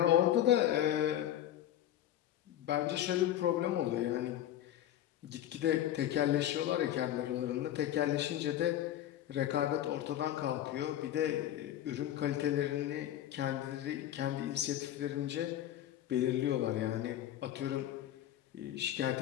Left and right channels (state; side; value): quieter; right; 12.1 dB